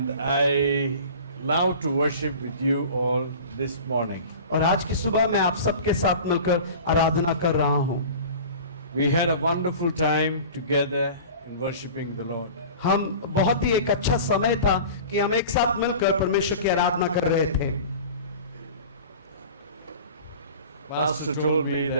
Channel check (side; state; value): both; inverted; correlation -0.38